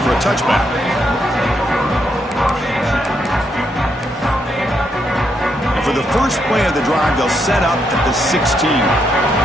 for a touchback. And for the first play of the drive, they'll set up at the 16.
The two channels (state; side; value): normal; both; correlation 0.78